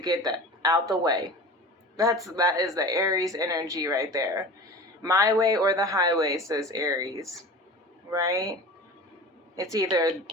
that out the way. That is the Aries energy right there. My way or the highway, says Aries, right? It's either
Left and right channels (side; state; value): both; normal; correlation 0.35